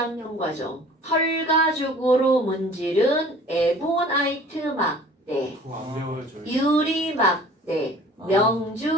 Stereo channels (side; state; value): both; normal; correlation 0.48